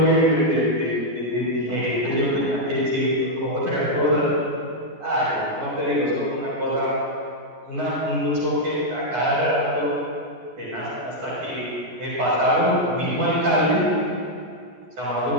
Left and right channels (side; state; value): left; late; 14 ms